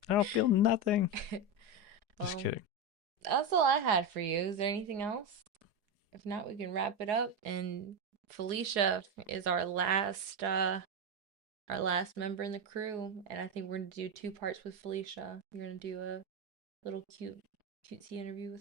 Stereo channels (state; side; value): late; left; 4.8 ms